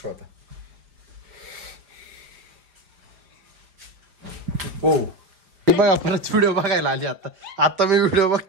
होता. हो बघा परत व्हिडिओ बघायला आली. आता मी व्हिडिओ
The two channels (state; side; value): late; left; 4.9 ms